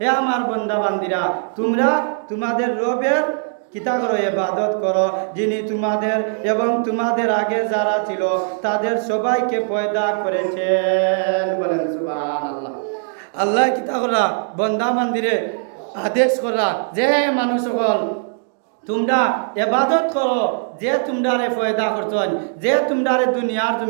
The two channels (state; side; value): silent; left; digital silence